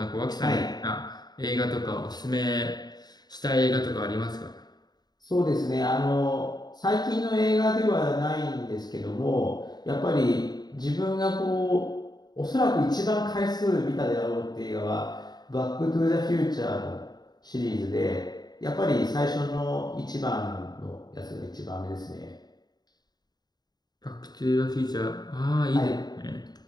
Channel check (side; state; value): right; late; 0.20 ms